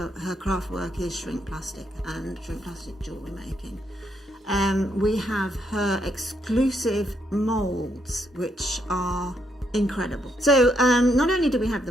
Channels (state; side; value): normal; both; correlation 0.76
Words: craft work is shrink plastic and shrink plastic jewellery making. We have her exclusive moulds, which are incredible. So not only do we have